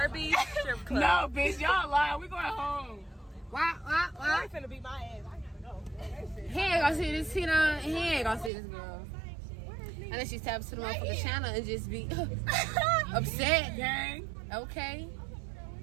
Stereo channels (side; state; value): left; drops out; at 8.5 s